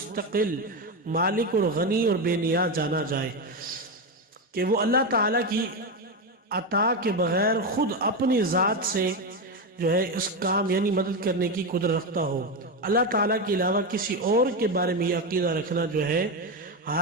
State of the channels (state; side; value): normal; both; correlation 0.12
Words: مالک اور غنی اور بے نیاز جانا جائے، کہ وہ اللہ تعالیٰ کی عطا کے بغیر خود اپنی ذات سے جو ہے اس کام یعنی مدد کرنے کی قدرت رکھتا ہو۔ اللہ تعالیٰ کے علاوہ کسی اور کے بارے میں یہ عقیدہ رکھنا جو ہے